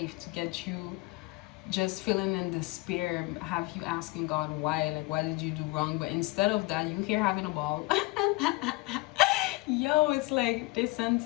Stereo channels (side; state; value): right; quieter; 22.1 dB